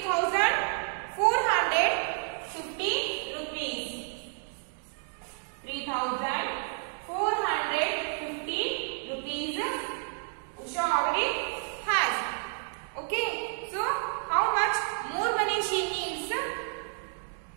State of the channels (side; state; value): left; silent; 58 dB below the other